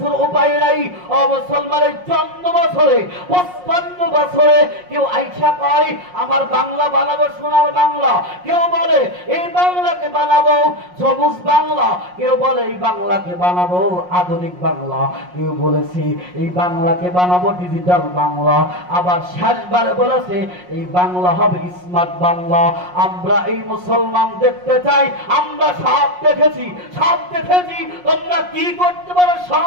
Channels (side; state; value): left; late; 5.5 ms